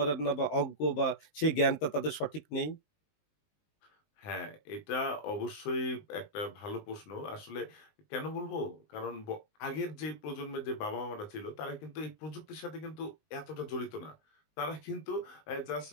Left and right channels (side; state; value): right; late; 19 ms